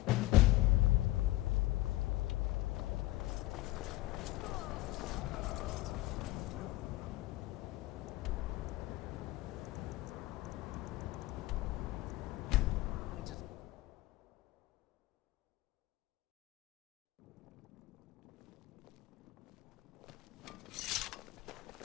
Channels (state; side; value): quieter; right; 18.3 dB